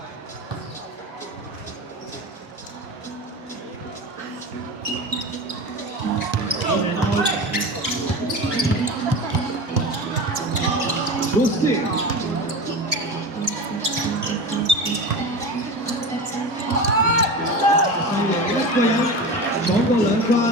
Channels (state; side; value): normal; both; correlation 0.28